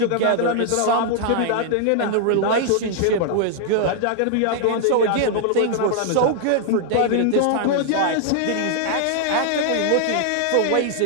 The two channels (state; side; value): different; both; correlation -0.01